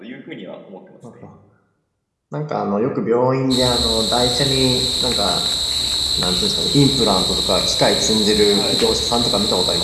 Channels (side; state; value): both; identical; correlation 1.00